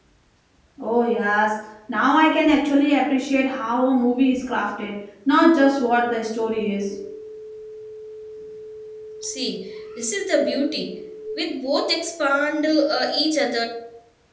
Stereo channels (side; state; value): both; identical; correlation 1.00